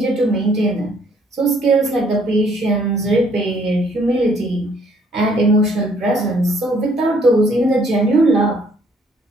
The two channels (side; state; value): both; normal; correlation 0.64